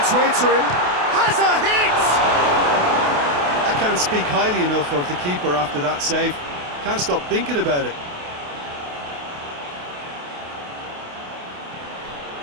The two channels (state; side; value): late; left; 28 ms